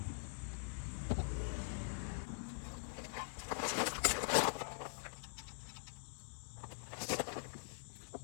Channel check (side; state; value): right; silent; digital silence